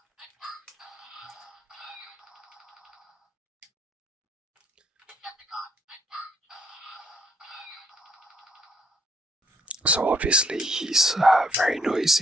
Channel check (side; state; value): both; normal; correlation 0.68